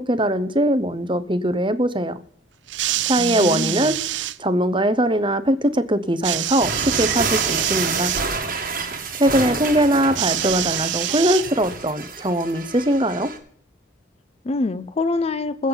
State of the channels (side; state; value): both; normal; correlation 0.47